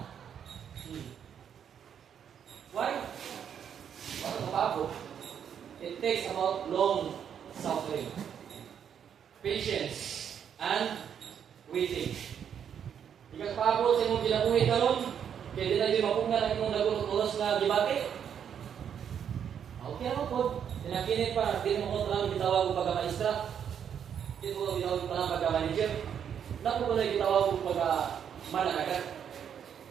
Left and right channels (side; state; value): left; quieter; 8.3 dB